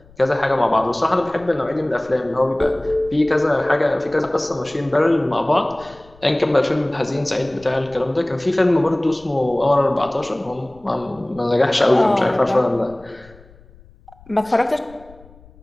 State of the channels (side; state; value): left; noise; rumble, 25 dB below the sound